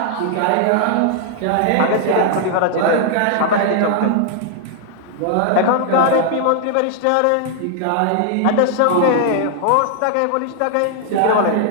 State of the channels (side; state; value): both; different; correlation 0.00